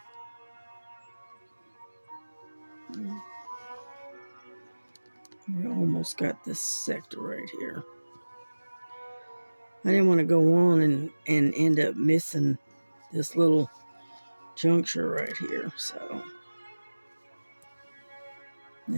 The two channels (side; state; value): both; inverted; correlation -1.00